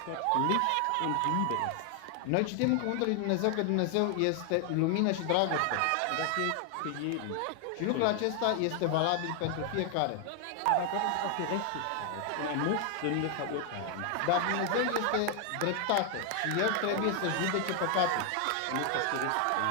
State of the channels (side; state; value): both; different; correlation 0.00